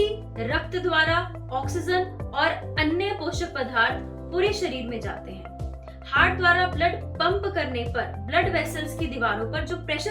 रक्त द्वारा ऑक्सीजन और अन्य पोषक पदार्थ पूरे शरीर में जाते हैं। हार्ट द्वारा ब्लड पंप करने पर ब्लड वेसल्स की दीवारों पर जो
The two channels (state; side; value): identical; both; correlation 1.00